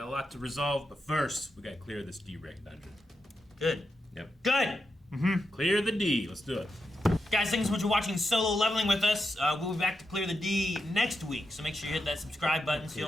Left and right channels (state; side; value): normal; both; correlation 0.86